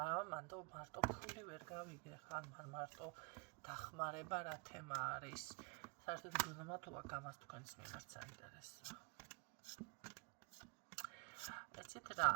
მანდ მარტო ფული ვერ გავიგე, ხან მარტო დახმარება რა თემა არის. საერთოდ გზნობათობა გამას თქვენს მიმართ საინტერესოა. ეცით რა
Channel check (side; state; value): left; quieter; 34.1 dB